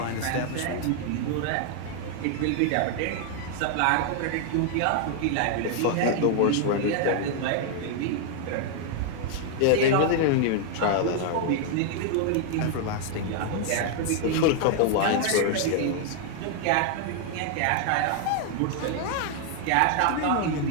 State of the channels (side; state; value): both; different; correlation 0.00